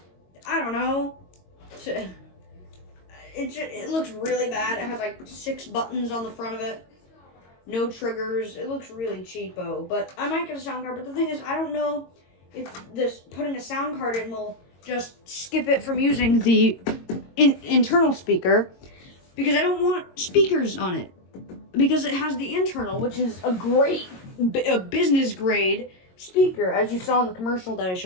don't know. It looks really bad. It has like 6 buttons on the front of it. No triggers. It looks really cheapo, but I might get a sound card. But the thing is, I don't know if this putting a sound card in will just skip it from using the internal speaker, because I don't want speakers on it, because it has the internal, which is a business grade speaker. As you saw in the commercial that I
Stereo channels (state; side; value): late; right; 22 ms